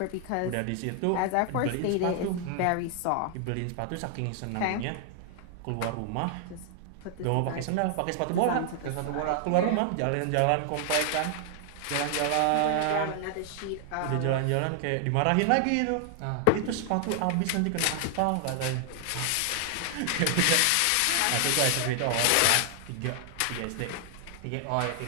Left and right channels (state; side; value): different; both; correlation 0.00